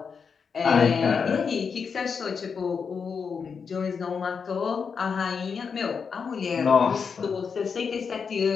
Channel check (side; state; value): right; quieter; 5.9 dB